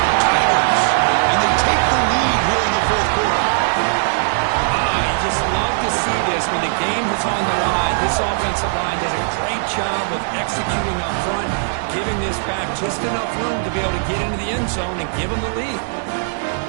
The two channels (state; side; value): silent; left; 64 dB below the other